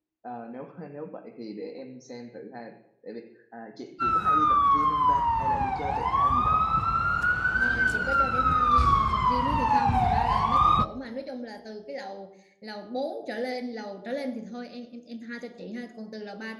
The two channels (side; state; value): both; identical; correlation 1.00